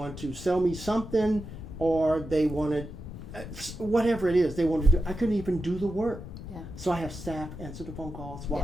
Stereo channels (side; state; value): left; noise; rumble, 11 dB below the sound